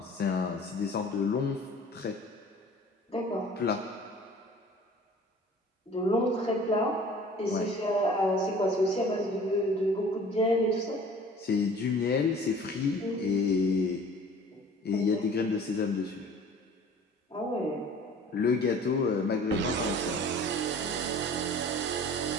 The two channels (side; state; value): both; normal; correlation 0.47